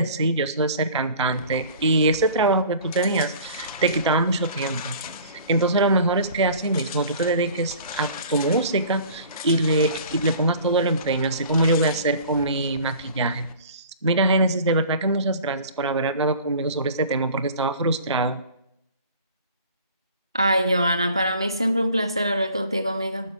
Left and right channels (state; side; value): inverted; both; correlation -0.46